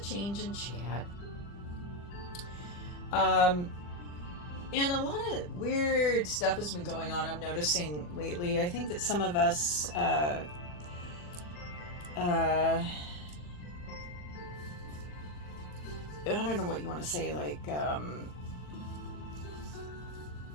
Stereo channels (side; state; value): right; late; 40 ms